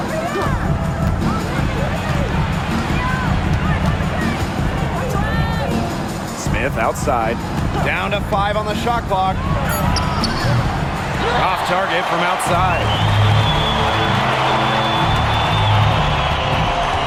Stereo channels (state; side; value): identical; both; correlation 1.00